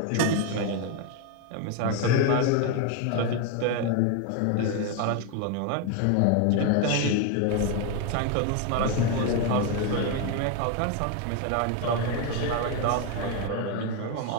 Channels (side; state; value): both; different; correlation 0.01